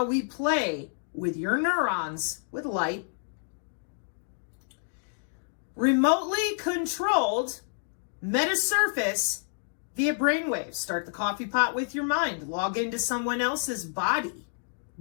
we play with your neurons with light. Remotely controlled metasurface via brainwaves. Start the coffee pot with your mind. Log into someone else's body.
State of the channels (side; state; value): right; silent; digital silence